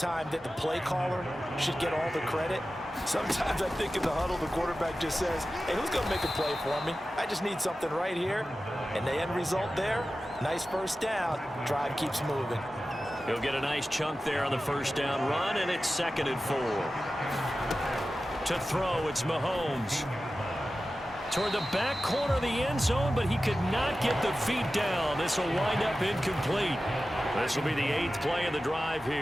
that the play caller should get all the credit. Sometimes I think in the huddle, the quarterback just says, hey, who's going to make a play for me? I just need something right here. And the end result there, nice first down. Drive keeps moving. He'll get a nice chunk there on the first down run, and it's 2nd and 4. To throw, it's Mahomes. Toward the back corner of the end zone, but he could not get the feet down. This will wind up incomplete. This will be the 8th play of the drive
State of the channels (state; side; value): normal; both; correlation 0.94